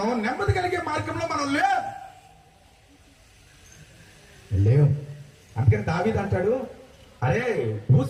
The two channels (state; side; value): identical; both; correlation 1.00